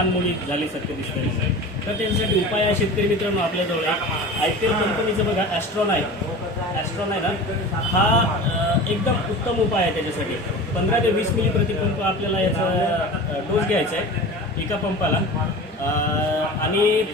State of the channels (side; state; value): both; normal; correlation 0.35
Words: झाल्यासारखं दिसते. तर त्याच्यासाठी उपाय आहे शेतकरी मित्रांनो आपल्याजवळ IPL कंपनीचं बघा ॲस्ट्रॉन आहे ना, हा एकदम उत्तम उपाय आहे. त्याच्यासाठी 15 ते 20 मिली प्रतिपंप आपल्याला याचा डोस घ्यायचा आहे एका पंपाला आणि